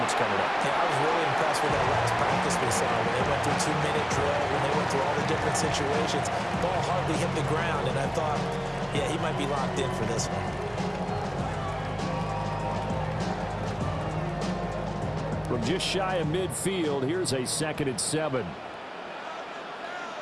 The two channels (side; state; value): both; identical; correlation 1.00